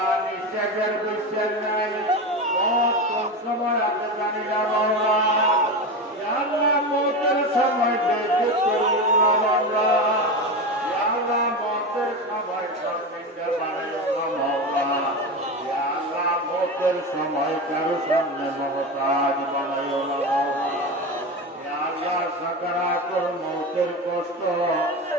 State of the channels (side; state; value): both; normal; correlation 0.21